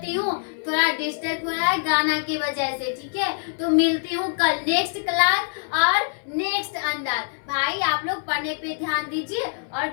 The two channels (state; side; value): silent; right; 62 dB below the other